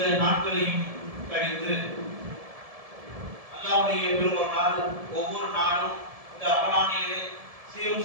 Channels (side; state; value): left; late; 1.7 ms